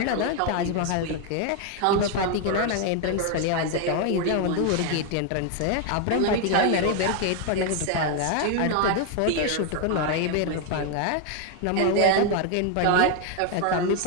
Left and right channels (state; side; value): different; both; correlation 0.01